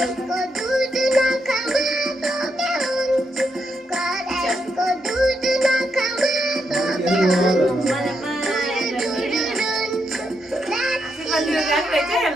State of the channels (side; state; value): both; normal; correlation 0.81